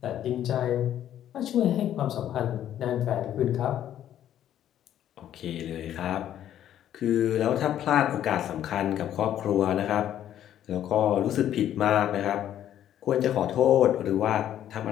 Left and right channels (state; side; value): quieter; right; 11.1 dB